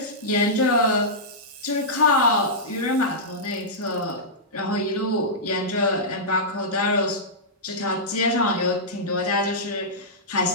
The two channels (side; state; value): both; normal; correlation -0.13